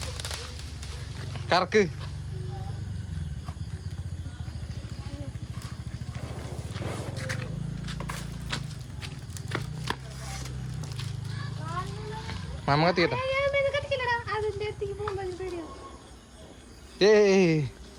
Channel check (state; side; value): identical; both; correlation 1.00